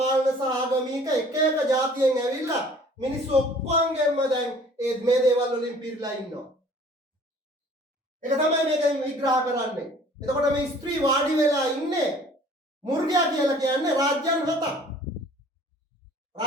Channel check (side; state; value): both; normal; correlation 0.52